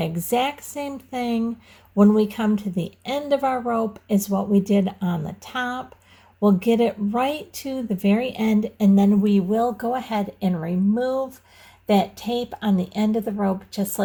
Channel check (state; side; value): identical; both; correlation 1.00